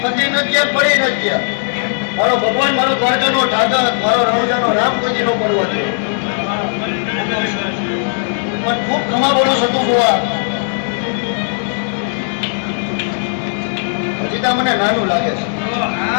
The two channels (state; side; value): silent; right; digital silence